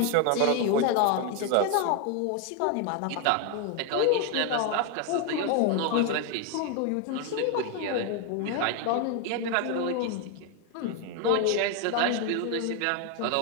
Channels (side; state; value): both; different; correlation 0.01